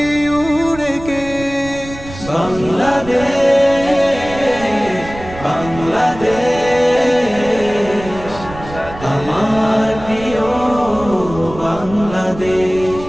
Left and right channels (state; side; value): noise; right; rumble, 14 dB below the sound